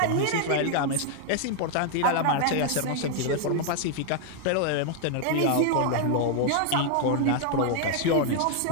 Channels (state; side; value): different; both; correlation 0.00